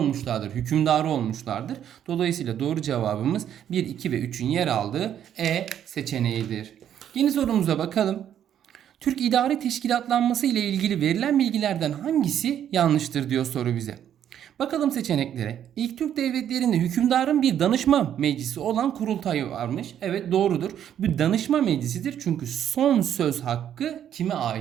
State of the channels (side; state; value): left; quieter; 10.0 dB